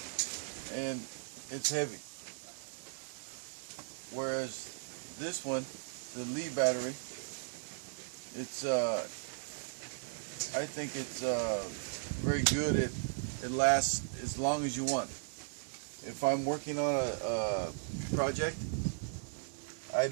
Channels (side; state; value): left; silent; 53 dB below the other